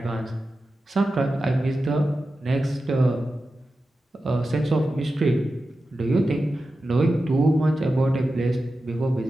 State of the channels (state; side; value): normal; both; correlation 0.92